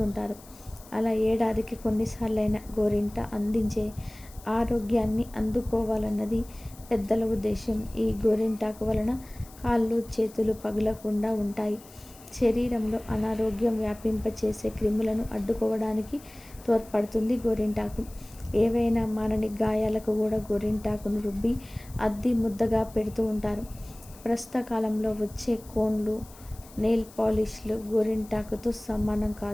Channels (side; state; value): left; noise; hiss, 22 dB below the sound